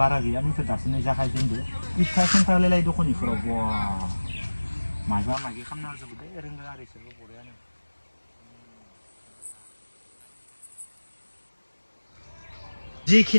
बारा गैया नैफोर दासो नै जागायजेनदो इथा सेन्टारलाय दखान इफोराव बवा माबा माबि खालामना होजोबो दे रोंगो आरो इसोरबो बरियानो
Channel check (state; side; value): inverted; both; correlation -1.00